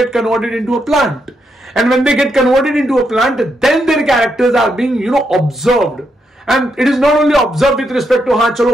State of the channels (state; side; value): normal; both; correlation 0.80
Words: converted into a plant. And when they get converted into a plant, then their characters are being, you know, observed. And it is not only observed with respect to हाँ चलो